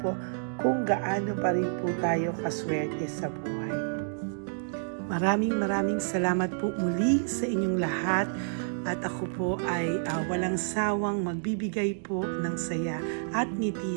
kung gaano pa rin po tayo kaswerte sa buhay. Maraming salamat po muli sa inyong lahat. At ako po ay walang sawang magbibigay po ng saya at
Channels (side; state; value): left; silent; digital silence